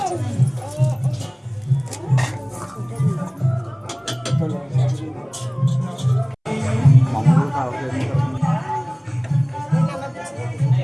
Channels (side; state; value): both; identical; correlation 1.00